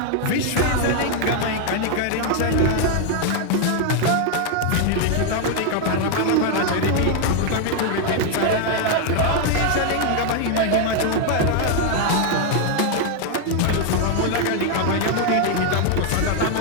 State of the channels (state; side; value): different; both; correlation 0.00